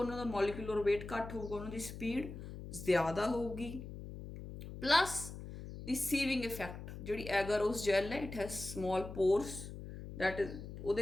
ਉਹਨਾਂ ਦਾ ਮੋਲੀਕੂਲਰ ਵੇਟ ਘੱਟ ਹੋਊਗਾ, ਉਹਨਾਂ ਦੀ ਸਪੀਡ ਜ਼ਿਆਦਾ ਹੋਊਗੀ। ਪਲੱਸ ਦੀ ਸੀਵਿੰਗ ਇਫੈਕਟ, ਜਿਹੜੀ ਐਗਾਰੋਸ ਜੈਲ ਹੈ it has small pores that is,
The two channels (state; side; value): noise; left; hum, 11 dB below the sound